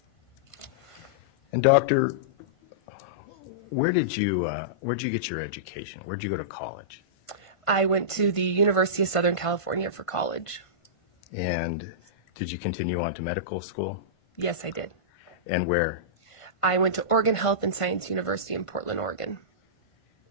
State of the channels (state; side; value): late; right; 1.5 ms